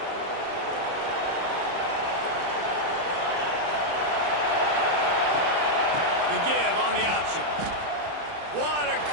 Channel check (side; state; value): left; late; 30 ms